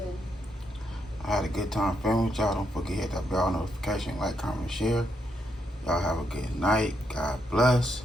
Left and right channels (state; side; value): normal; both; correlation 0.78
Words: I had a good time filming with y'all. Don't forget to hit that bell notification, like, comment, share. Y'all have a good night. God bless.